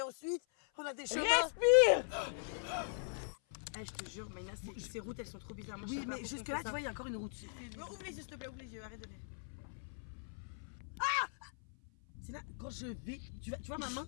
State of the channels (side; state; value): right; silent; 51 dB below the other